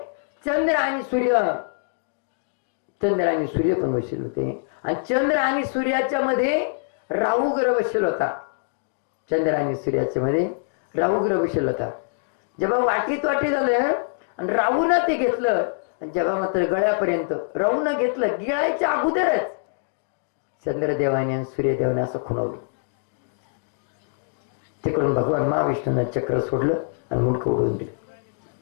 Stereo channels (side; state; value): right; silent; digital silence